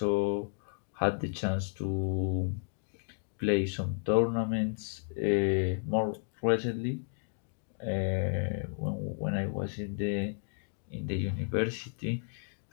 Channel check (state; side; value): silent; right; 56 dB below the other